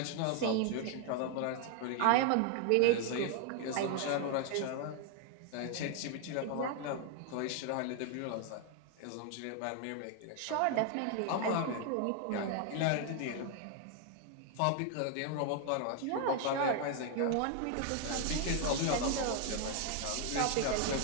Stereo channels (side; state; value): both; different; correlation 0.00